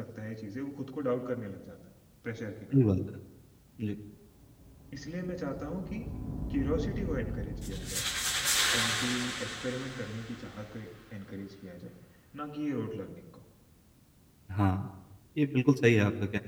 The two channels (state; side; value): identical; both; correlation 1.00